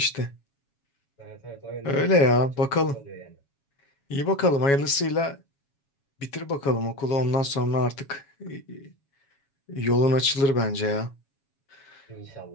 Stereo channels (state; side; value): late; right; 7.2 ms